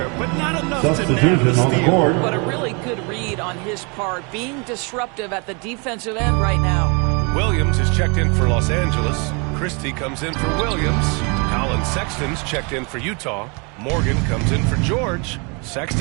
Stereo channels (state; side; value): quieter; left; 32.5 dB